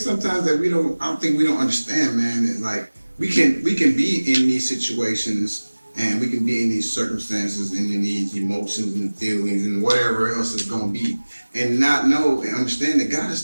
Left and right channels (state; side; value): inverted; both; correlation -1.00